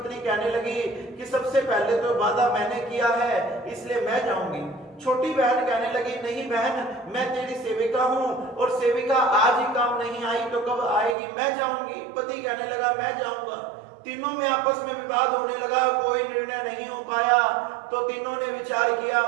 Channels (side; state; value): left; drops out; at 11.2 s